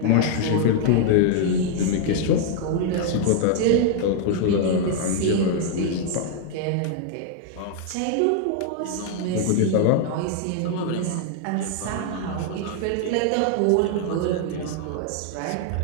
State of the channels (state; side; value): different; both; correlation 0.00